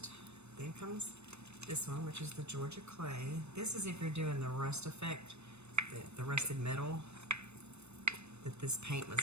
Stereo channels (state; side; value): late; left; 0.81 ms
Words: Then comes this one, which is the Georgia clay. This is if you're doing the rust effect, the rusted metal that this paint was